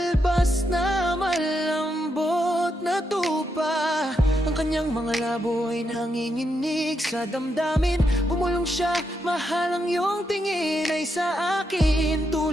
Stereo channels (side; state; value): both; normal; correlation 0.82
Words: na malambot na tupa. Ang kanyang mga labo ay nanginginig sa damdamin. Bumulong siya, mahal ang iyong tingin ay sa akin,